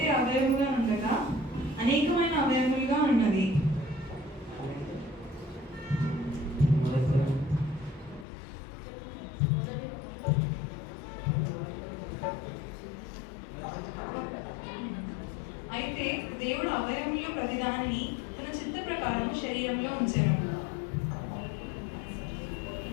అవయముగా ఉండగా అనేకమైన అవయములుగా ఉన్నది. అయితే దేవుడు అవయముల్లో ప్రతిదానిని తన చిత్త ప్రకారం శరీరంలో ఉంచెను.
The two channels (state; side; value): drops out; right; at 8.2 s